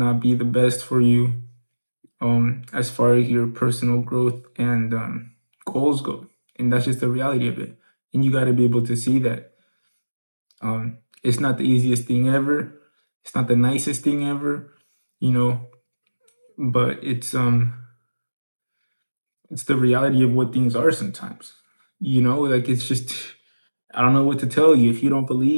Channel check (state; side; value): inverted; both; correlation -1.00